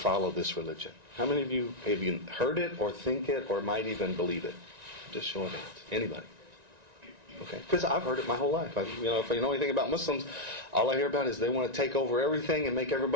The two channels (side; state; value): left; late; 1.9 ms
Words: this religion. How many of you have you heard it or think it or might even believe it? Just show of hands. Anybody? Okay, because I've heard it my whole life. If you know anything about Muslims, all I hear about is they want to take over everything and make